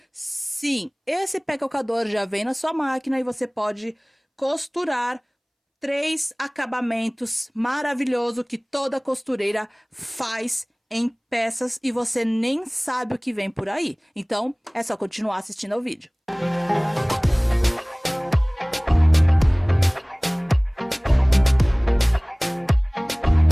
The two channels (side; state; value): both; identical; correlation 1.00